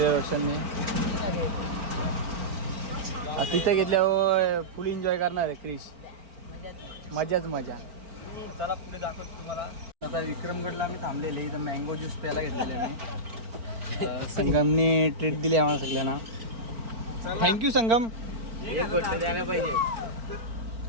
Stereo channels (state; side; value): late; left; 4.4 ms